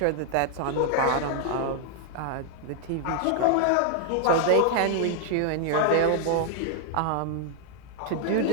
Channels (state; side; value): different; both; correlation 0.00